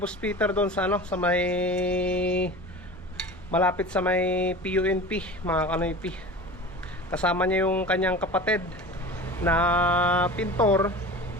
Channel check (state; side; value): normal; both; correlation 0.35